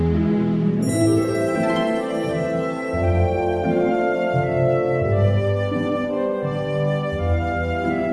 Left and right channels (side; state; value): both; identical; correlation 1.00